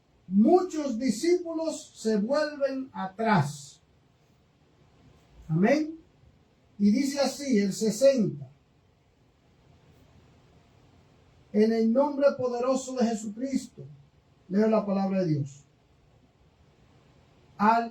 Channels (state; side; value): identical; both; correlation 1.00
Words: muchos discípulos se vuelven atrás. Amén. Y dice así el 60. En el nombre poderoso de Jesucristo, leo la palabra de Dios.